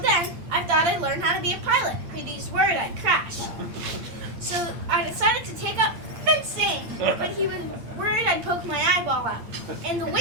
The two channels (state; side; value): late; left; 8.7 ms